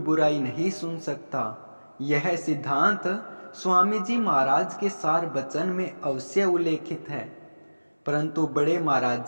नहीं सुन सकता। यह सिद्धांत स्वामी जी महाराज के सार वचन में अवश्य उल्लेखित है। परंतु बड़े महाराज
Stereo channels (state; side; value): inverted; both; correlation -1.00